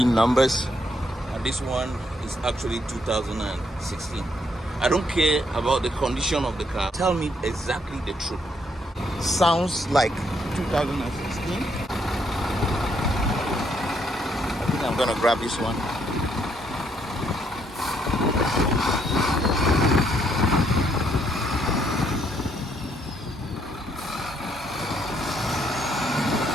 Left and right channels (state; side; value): normal; both; correlation 0.72